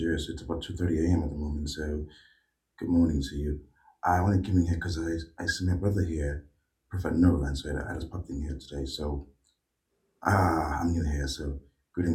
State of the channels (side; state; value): both; identical; correlation 1.00